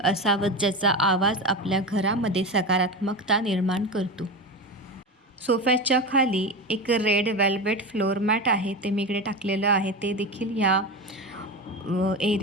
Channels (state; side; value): normal; both; correlation 0.22